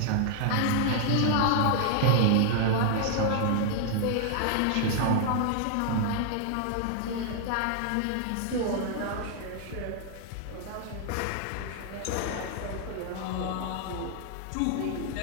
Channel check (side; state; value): both; different; correlation 0.00